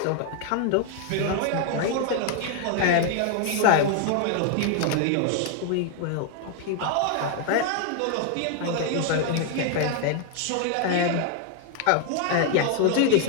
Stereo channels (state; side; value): different; both; correlation 0.00